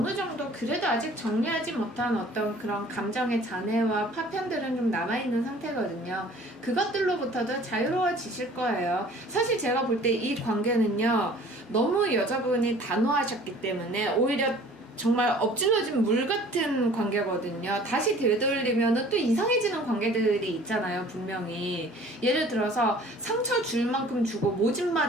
정도 그래도 아직 정리하지 못한 어떤 그런 감정의 잔해와 파편들은 좀 남아있는 상태거든요. 그것들로부터도 자유로워지실 거예요. 사실 제가 볼 때 이 관계는요, 너무 여자분이 단호하셨기 때문에 오히려 정말 엎질러진 물 같은 관계거든요. 다시 되돌리면은 또 이상해지는 관계들이 있잖아요, 분명히. 예를 들어서 상처 줄 만큼 주고 모진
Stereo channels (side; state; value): both; normal; correlation 0.50